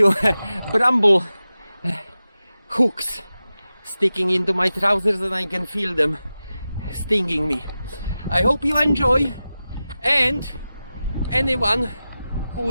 bramble hooks sticking into my trousers and I can feel them stinging me. I hope you enjoy, and anyone who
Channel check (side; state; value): both; inverted; correlation -0.93